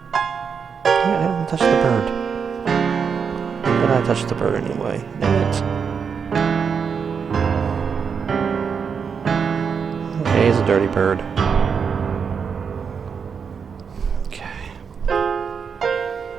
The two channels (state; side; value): quieter; left; 6.3 dB